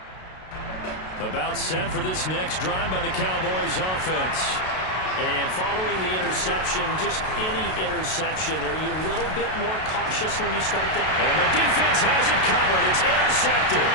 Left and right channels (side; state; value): right; late; 32 ms